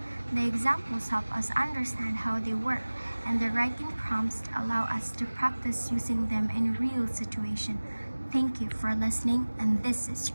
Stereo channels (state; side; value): inverted; both; correlation -1.00